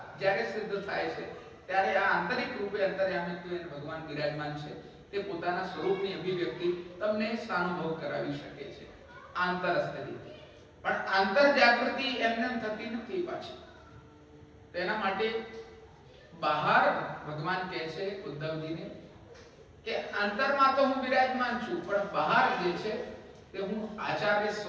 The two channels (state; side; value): identical; both; correlation 1.00